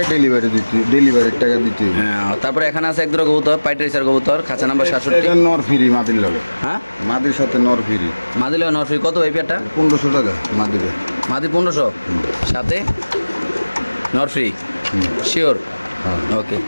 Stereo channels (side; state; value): both; inverted; correlation -1.00